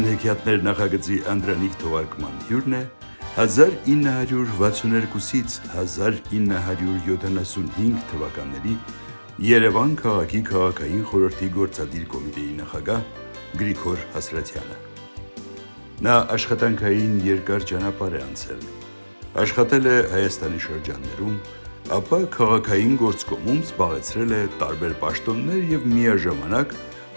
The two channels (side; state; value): both; inverted; correlation -1.00